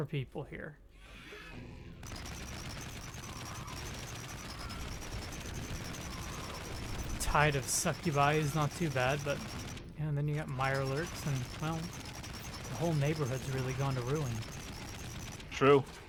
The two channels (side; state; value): both; identical; correlation 1.00